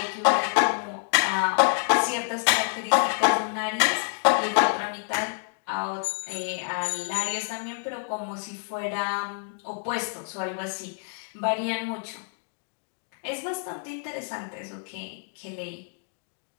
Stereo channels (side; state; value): right; silent; 60 dB below the other